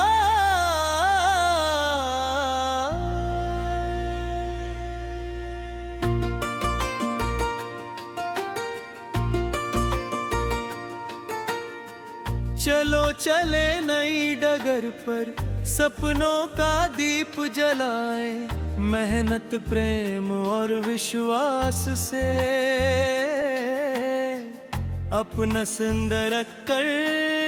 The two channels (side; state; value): both; identical; correlation 1.00